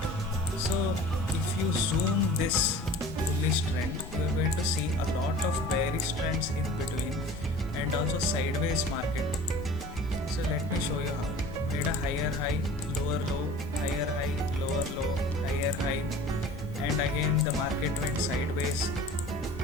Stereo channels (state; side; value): normal; both; correlation 0.43